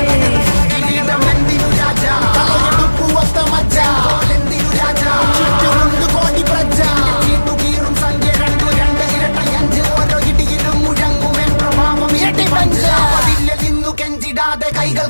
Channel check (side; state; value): both; inverted; correlation -1.00